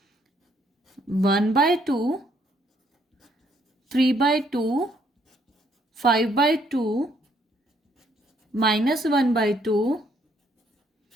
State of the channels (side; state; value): both; normal; correlation 0.69